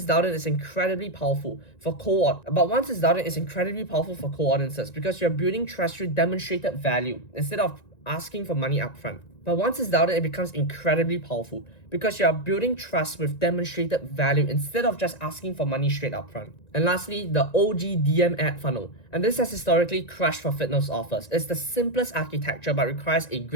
downloaded, it's incredibly powerful for co-audiences because you're building trust through demonstrated value instead of asking for money upfront. But once it's downloaded, it becomes incredibly powerful because you are building trust with demonstrated value instead of just asking for money straight up front. And lastly, the OG DM ad funnel. And this has historically crushed for fitness offers. It's the simplest architecture but requires a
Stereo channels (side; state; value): right; late; 1.9 ms